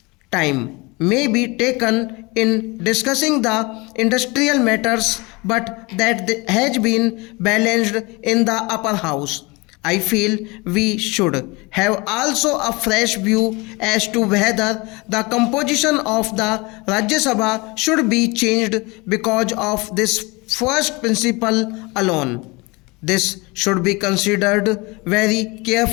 time may be taken in discussing the industrial matters, but that has been balanced in the upper house. I feel we should have also a fresh view as to whether the composition of the Rajya Sabha should be changed because of this first principle alone. This should be considered very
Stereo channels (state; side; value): quieter; right; 25.6 dB